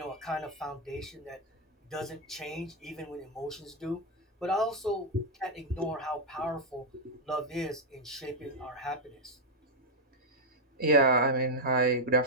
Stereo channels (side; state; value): both; normal; correlation 0.00